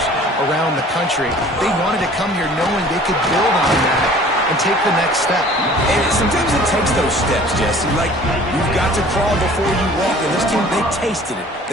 around the country. They wanted to come here knowing they could build on that and take the next step. And sometimes it takes those steps, Jesse. Like, you've got to crawl before you walk. And this team, they tasted it.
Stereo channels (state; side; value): normal; both; correlation 0.49